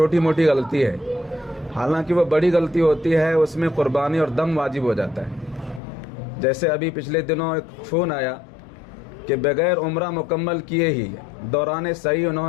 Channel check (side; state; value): right; drops out; at 5.8 s